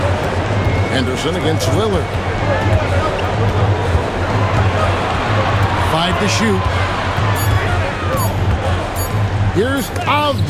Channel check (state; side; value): identical; both; correlation 1.00